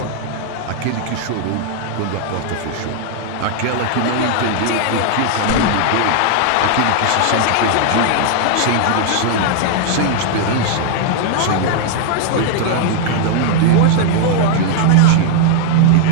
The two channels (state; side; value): different; both; correlation -0.01